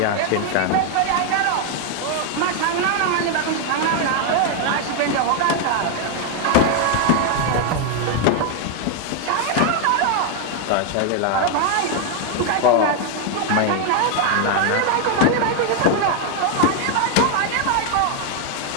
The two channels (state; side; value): different; both; correlation 0.01